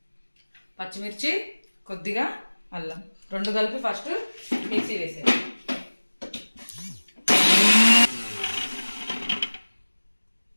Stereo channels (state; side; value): inverted; both; correlation -1.00